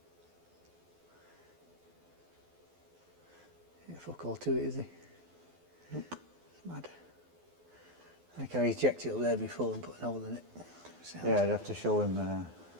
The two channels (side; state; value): left; late; 12 ms